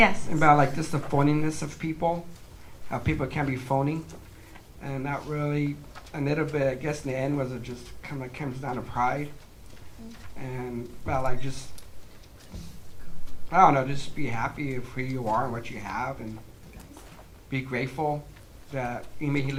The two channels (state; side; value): identical; both; correlation 1.00